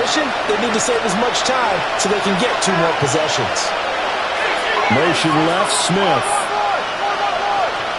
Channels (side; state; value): both; identical; correlation 1.00